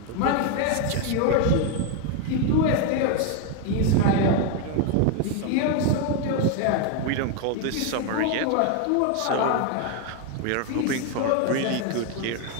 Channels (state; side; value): different; both; correlation 0.01